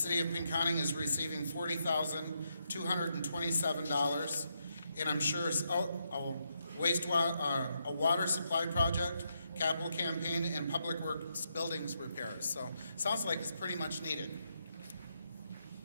of Pinconning is receiving $40,227, and I'm sure it's a water supply project, capital campaign, and public works buildings repairs. So sounds like it's pretty much needed.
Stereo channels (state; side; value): inverted; both; correlation -0.80